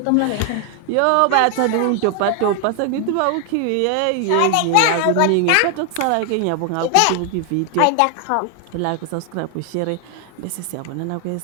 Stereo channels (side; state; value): both; different; correlation 0.00